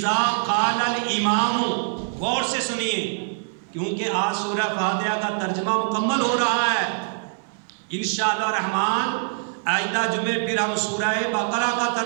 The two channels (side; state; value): left; silent; 63 dB below the other